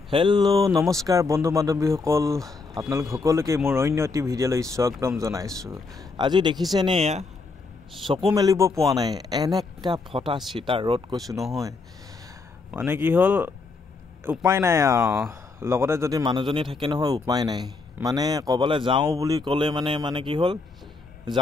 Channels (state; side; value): quieter; right; 4.1 dB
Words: হেল্ল' নমস্কাৰ বন্ধু বান্ধৱীসকল, আপোনালোক সকলোকে মোৰ অন্য এটি ভিডিঅ'লৈ স্বাগতম জনাইছোঁ। আজি দেখিছেনে এয়া চকু মেলিব পোৱা নাই, এনেকা ফটা চিটা ৰ'দ কৈছোঁ নহয়। মানে কি হ'ল উপায় নাই লগতে যদি মানুহজনী থাকে নহয় উপায় নাই। মানে ক'বলৈ যাওঁ বুলি ক'লে মানে কি হ'ল